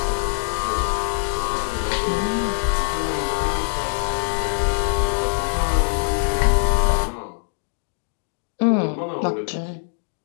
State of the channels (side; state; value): right; silent; digital silence